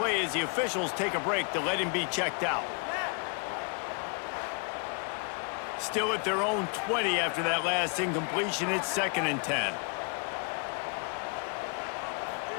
as the officials take a break to let him be checked out. Still at their own 20 after that last incompletion. It's 2nd and 10.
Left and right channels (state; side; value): quieter; right; 37.5 dB